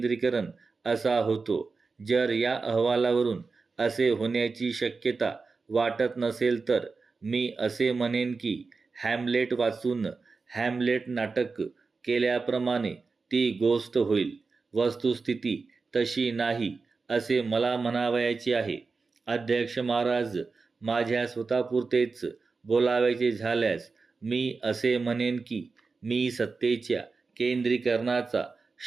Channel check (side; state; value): left; quieter; 4.4 dB